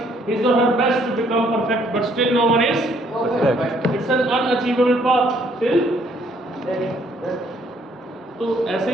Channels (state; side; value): normal; both; correlation 0.66